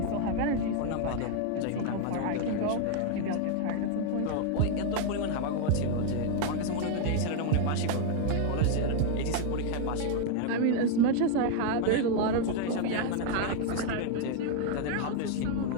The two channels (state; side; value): different; both; correlation 0.00